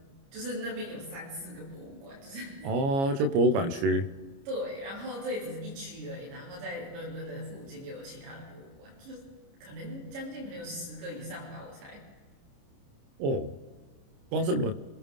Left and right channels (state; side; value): late; left; 29 ms